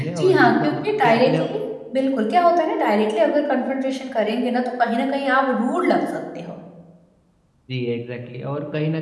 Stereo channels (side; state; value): both; identical; correlation 1.00